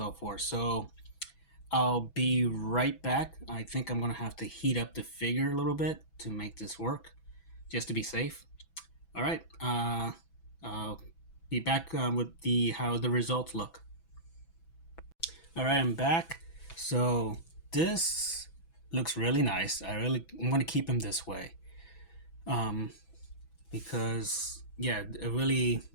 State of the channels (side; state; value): right; late; 6.1 ms